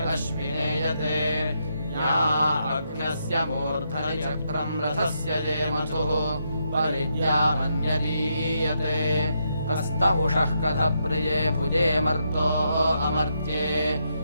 अश्विनेयते या अग्न्यस्य मूर्धनि चक्रम् रथस्य ये मथुः परिद्यामन्यदीयते कस्तौषः कथप्रिये भुजे मर्तो अमर्त्ये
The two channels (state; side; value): inverted; both; correlation -0.80